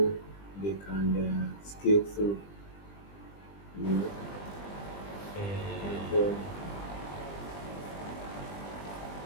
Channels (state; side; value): late; right; 20 ms